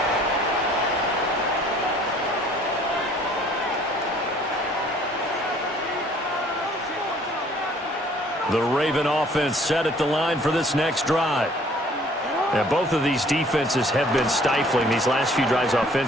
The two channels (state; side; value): normal; both; correlation 0.57